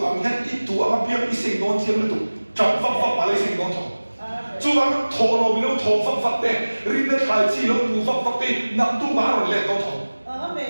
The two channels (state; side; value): inverted; both; correlation -1.00